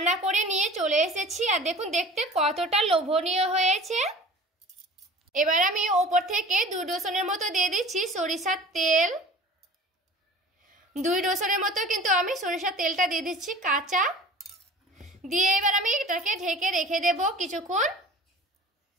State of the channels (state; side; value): normal; both; correlation 0.42